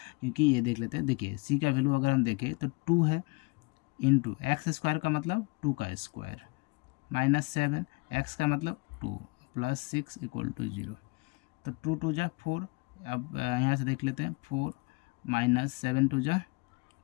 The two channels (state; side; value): quieter; right; 27.8 dB